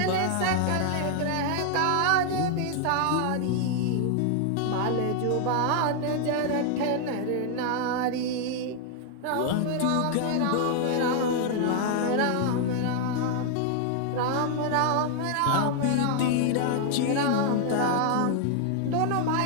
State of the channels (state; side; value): different; both; correlation 0.00